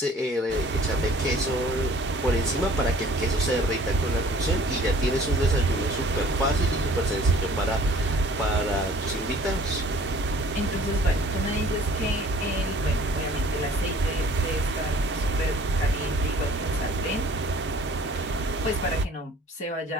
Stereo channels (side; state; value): both; normal; correlation 0.52